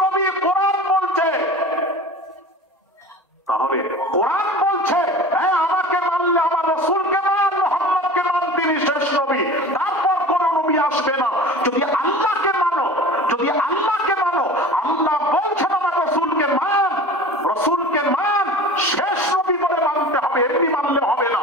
নবী কোরআন বলছে। তাহলে কোরআন বলছে আমাকে মানলে আমার রাসূলকে মান, মুহাম্মদকে মান, তিনি শেষ নবী। তারপর কোন নবী আসবে না। যদি আল্লাহকে মানো, যদি আল্লাহকে মানো, আল্লাহ বলছেন আমার রাসূলকে মান, রাসূলকে মান, শেষ নবী বলে মানতে হবে, এমনি মানলে হবে না।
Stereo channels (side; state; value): both; normal; correlation 0.38